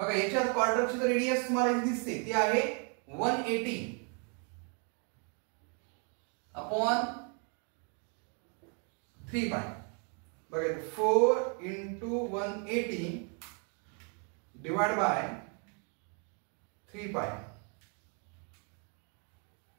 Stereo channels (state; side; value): quieter; left; 38.9 dB